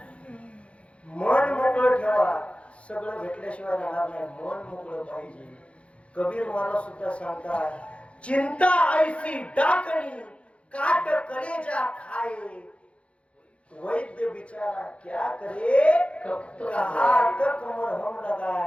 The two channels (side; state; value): right; late; 0.061 ms